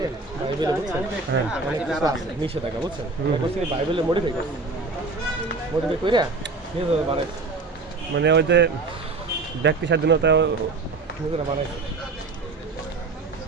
হ্যাঁ নিষেধাজ্ঞা বুঝছেন, বাইবেলের মডিফাই করছে, মডিফাই করে বানাইছে, মানে ওই যে ব্যক্তি স্বাধীনতা বানাইছে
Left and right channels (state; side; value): quieter; left; 3.8 dB